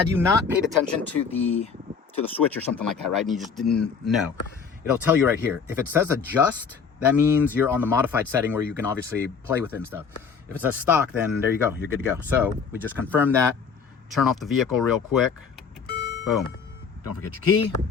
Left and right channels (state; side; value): quieter; right; 5.9 dB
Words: you not paid attention to the switch or something like that, right? And you just didn't know, it'll tell you right here. If it says adjust, that means you're on the modified setting where you can obviously play with it and stuff. If it says stock, then there you go. You're good to go. So we just confirmed that. Turn off the vehicle real quick. Boom. Don't forget your key.